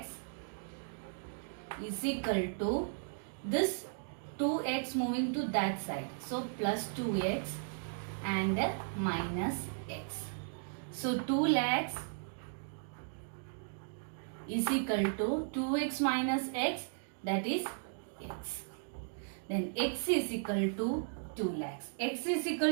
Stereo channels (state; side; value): silent; left; digital silence